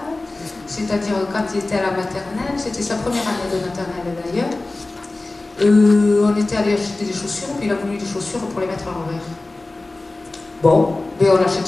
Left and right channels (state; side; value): quieter; right; 3.1 dB